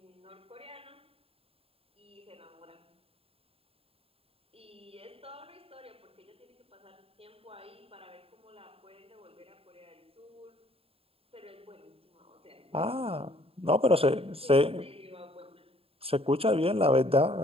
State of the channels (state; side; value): late; left; 0.27 ms